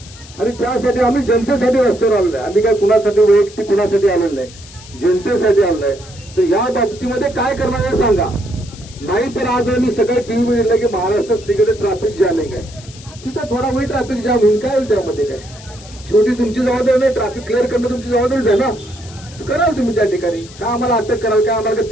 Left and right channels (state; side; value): noise; left; hiss, 19 dB below the sound